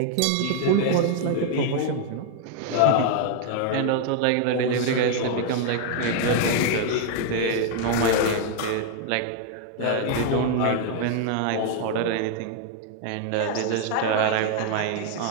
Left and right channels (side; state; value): both; different; correlation 0.00